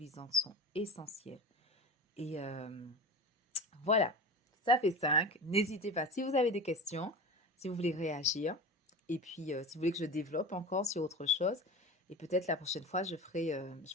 sont essentielles. Et voilà, ça fait 5. N'hésitez pas si vous avez des questions, si vous voulez réagir. Et puis si vous voulez que je développe encore sur autre chose. Et peut-être la prochaine fois, je ferai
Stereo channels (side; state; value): both; normal; correlation 0.30